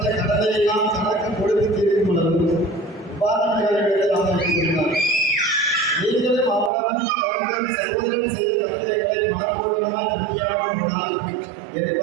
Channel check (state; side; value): drops out; left; at 6.7 s